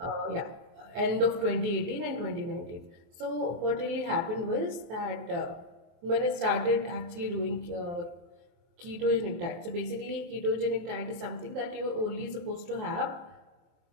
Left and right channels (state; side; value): late; left; 23 ms